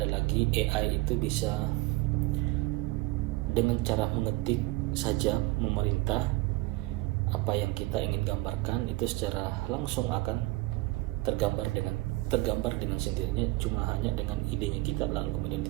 lagi AI itu bisa dengan cara mengetik saja memerintah apa yang kita ingin gambarkan itu secara langsung akan tergambar dengan sendirinya, cuma hanya dengan idenya kita lalu kemudian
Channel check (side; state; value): left; quieter; 20.7 dB